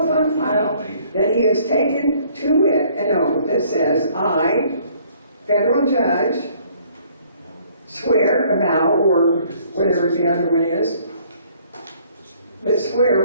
on file that he has taken to it an oath that says, I, federal judge, swear about, or whatever the other one is, but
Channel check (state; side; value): inverted; both; correlation -0.60